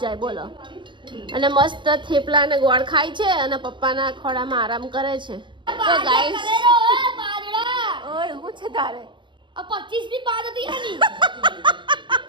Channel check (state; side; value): late; left; 0.23 ms